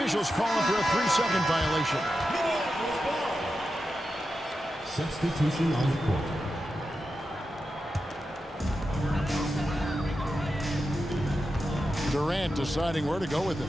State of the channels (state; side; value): normal; both; correlation 0.90